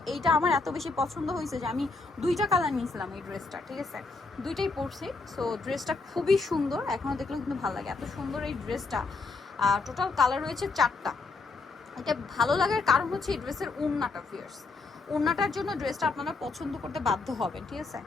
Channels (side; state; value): right; quieter; 3.9 dB